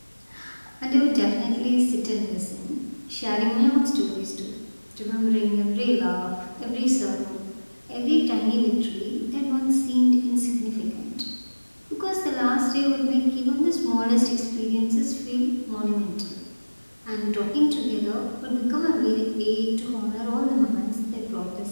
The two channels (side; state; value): both; inverted; correlation -1.00